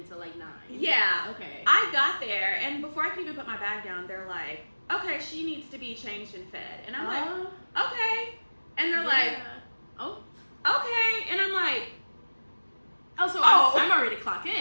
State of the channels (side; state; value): both; inverted; correlation -1.00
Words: until like 9. Yeah. Okay. I got there and before I could even put my bag down, they're like, okay, she needs to be changed and fed. And I'm like, okay. And they're like, oh, okay. And I'm like, I'm already clocked